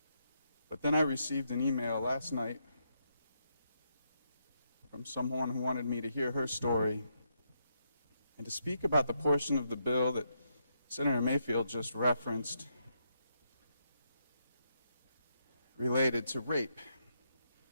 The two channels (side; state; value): both; inverted; correlation -0.80